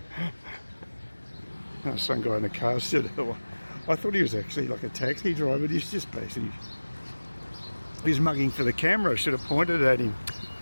Some guy in a car said, I thought he was actually like a taxi driver, but he's just basically, he's mugging for the camera. I should have pointed at him.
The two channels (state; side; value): inverted; both; correlation -1.00